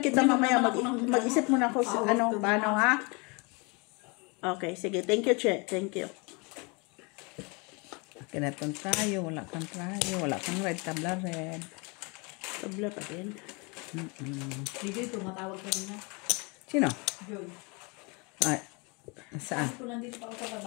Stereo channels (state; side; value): quieter; right; 30.0 dB